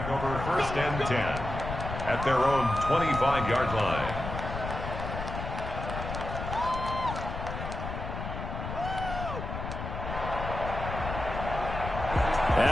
1st and 10 at their own 25-yard line.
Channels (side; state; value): left; noise; rumble, 6 dB below the sound